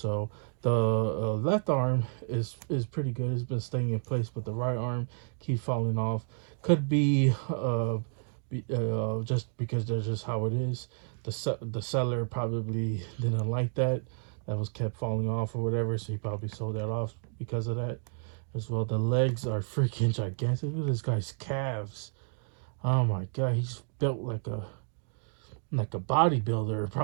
the left arm is pretty good. It's been staying in place, but the right arm keeps falling off. Could be just because that's just how it is. The seller probably didn't like that. That was kept falling off or whatever, so he probably sold that off because of that as well. The legs are freaking gigantic. Look at this guy's calves. Oh my god, he's built like a bodybuilder,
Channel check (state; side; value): silent; left; 57 dB below the other